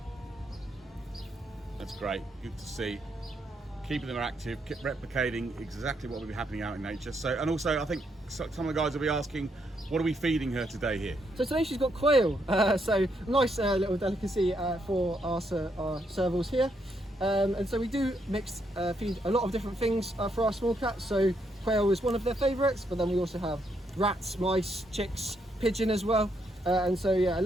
That's great, good to see. Keeping them active, replicating exactly what will be happening out in nature. So, and also I think some of the guys will be asking, what are we feeding her today here? So today she's got quail, so nice little delicacy for our servals here. And so we do feed a lot of different things for our small cats. So quail is one of their favourites, but then we also have rats, mice, chicks, pigeon as well. And so yeah, a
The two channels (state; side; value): normal; both; correlation 0.76